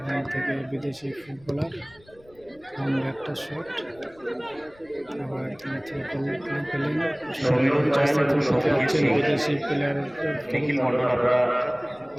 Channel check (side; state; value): left; noise; rumble, 28 dB below the sound